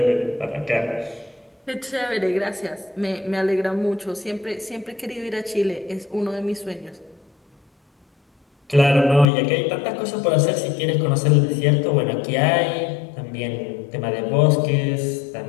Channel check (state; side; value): drops out; right; at 9.2 s